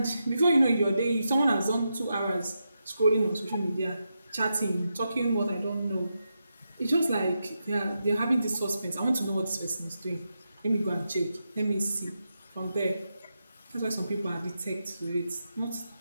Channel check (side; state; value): both; inverted; correlation -0.86